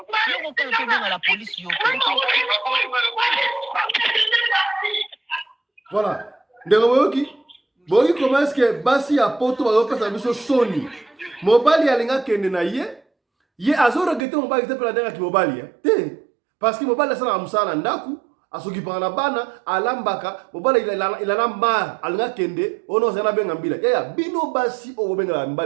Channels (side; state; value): left; drops out; at 14.2 s